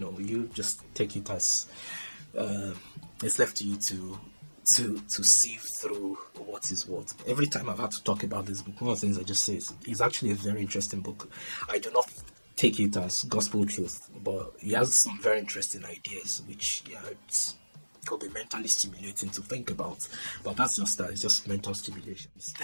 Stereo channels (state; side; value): inverted; both; correlation -1.00